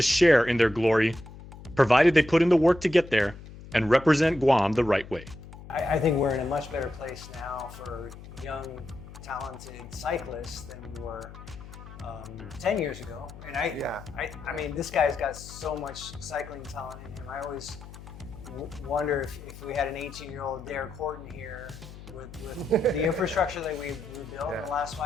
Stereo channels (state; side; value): noise; left; hum, 16 dB below the sound